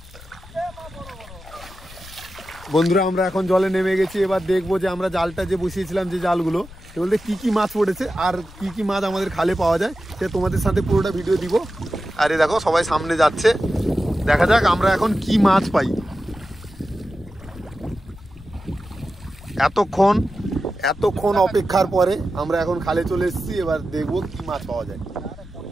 বন্ধুরা আমরা এখন জলে নেমে গেছি, এবার দেখবো যে আমরা জালটা যে বসিয়েছিলাম যে জালগুলো সে বলতে কি কি মাছ পড়েছে আর কি কি মাছ আমাদের খালে পাওয়া যায় সে তোমাদের সাথে পুরোটা ভিডিও দিব। আর এই দেখো সবাই সামনে যাচ্ছে, দেখা যাক আমরা এখন কি মাছ পাই। এতক্ষণ অপেক্ষার পরে আমরা এখন খালে চলে এসেছি, এবার দেখবো কি মাছ পাওয়া যায়।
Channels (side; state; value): left; noise; rumble, 19 dB below the sound